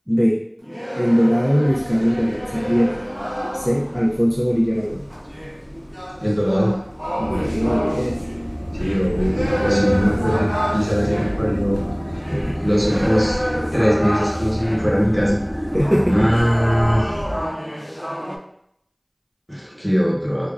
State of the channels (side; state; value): both; identical; correlation 1.00